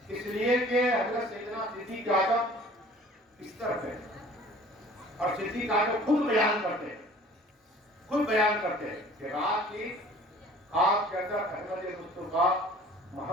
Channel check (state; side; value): normal; both; correlation 0.49